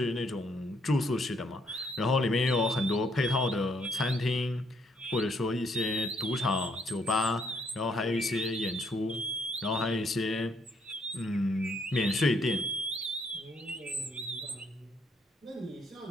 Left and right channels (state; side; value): normal; both; correlation 0.71